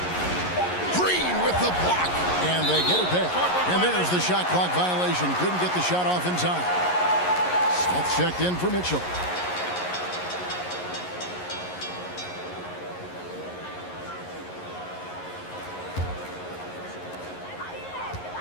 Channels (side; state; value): right; late; 11 ms